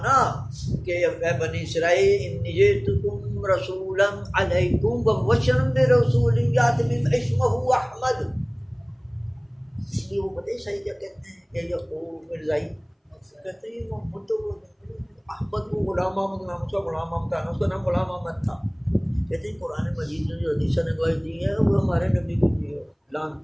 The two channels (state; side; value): identical; both; correlation 1.00